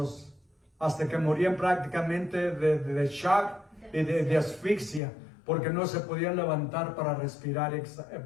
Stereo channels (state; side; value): drops out; right; at 5.0 s